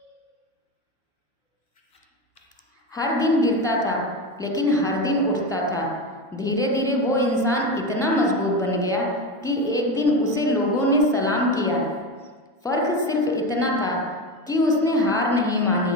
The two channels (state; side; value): normal; both; correlation 0.20